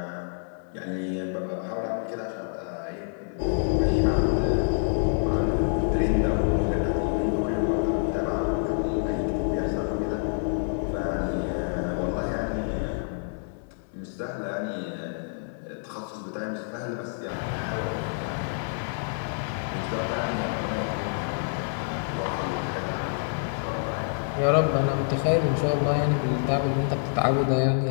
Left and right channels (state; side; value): silent; right; digital silence